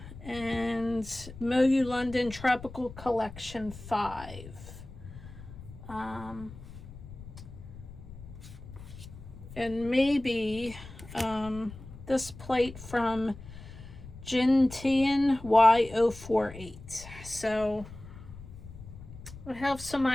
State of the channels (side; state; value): left; noise; rumble, 15 dB below the sound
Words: and MoYou London Tropical Collection 5. And maybe this plate from JinTian Y048. So I have some